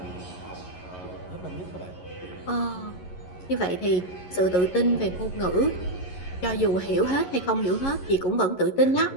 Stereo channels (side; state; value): right; late; 11 ms